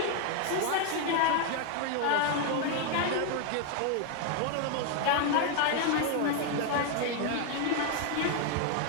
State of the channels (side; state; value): both; different; correlation 0.01